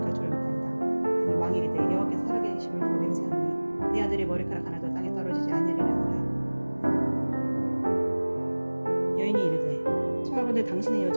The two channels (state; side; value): inverted; both; correlation -1.00